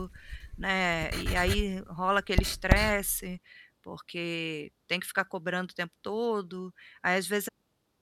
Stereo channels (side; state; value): both; identical; correlation 1.00